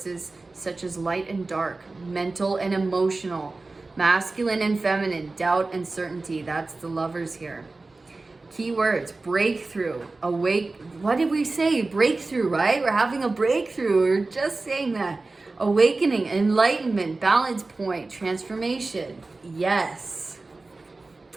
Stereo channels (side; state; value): left; quieter; 3.4 dB